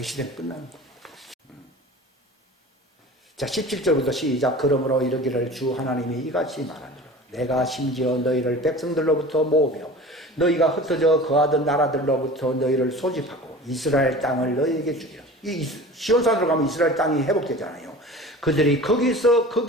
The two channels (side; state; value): both; normal; correlation 0.39